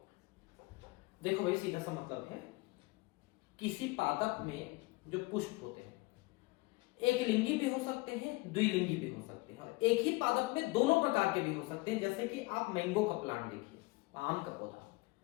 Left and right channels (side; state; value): right; quieter; 23.9 dB